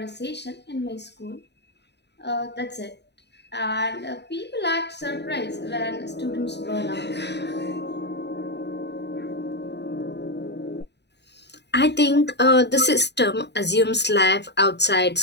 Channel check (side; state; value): right; late; 0.50 ms